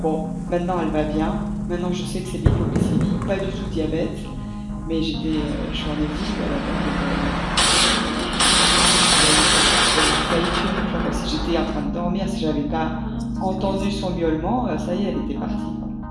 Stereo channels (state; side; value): identical; both; correlation 1.00